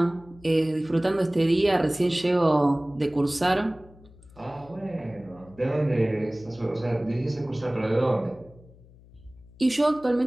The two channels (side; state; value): left; noise; hum, 24 dB below the sound